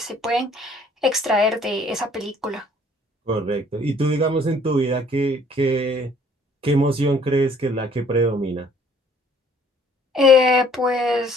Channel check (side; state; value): both; normal; correlation 0.58